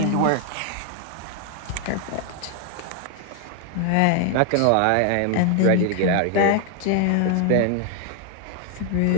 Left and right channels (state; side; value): different; both; correlation 0.00